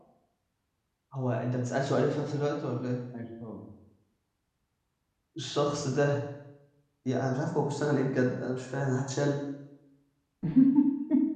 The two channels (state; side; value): identical; both; correlation 1.00